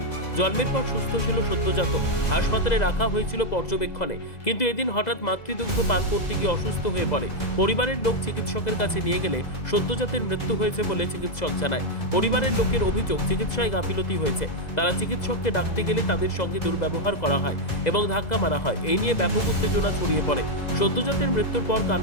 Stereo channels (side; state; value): right; late; 2.0 ms